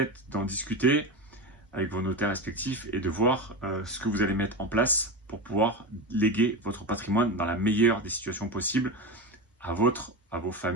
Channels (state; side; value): normal; both; correlation 0.21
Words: d'en discuter avec vos notaires respectifs et de voir ce que vous allez mettre en place pour pouvoir léguer votre patrimoine dans la meilleure des situations possibles à vos